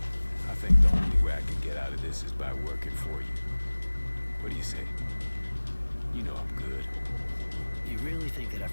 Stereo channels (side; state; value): both; inverted; correlation -1.00